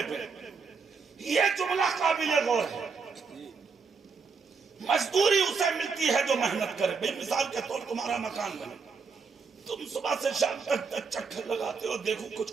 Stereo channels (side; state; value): left; quieter; 5.1 dB